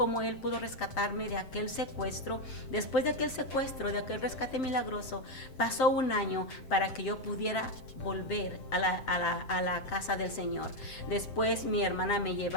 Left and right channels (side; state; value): right; late; 7.8 ms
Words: Él pudo rescatarme de aquel secuestro. Después de aquel secuestro, de aquel rescate milagroso, pasó un año para que yo pudiera volver a la casa del Señor. Después mi hermana me